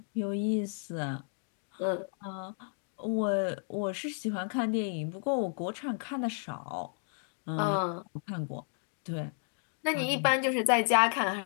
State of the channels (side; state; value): right; silent; 56 dB below the other